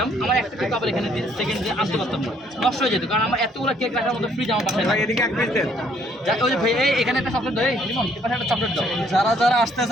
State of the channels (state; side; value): normal; both; correlation 0.65